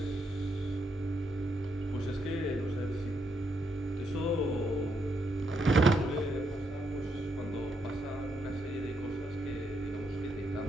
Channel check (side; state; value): both; normal; correlation 0.78